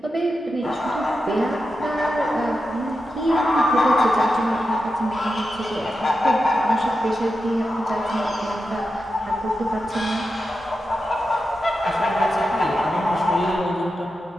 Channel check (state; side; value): normal; both; correlation 0.89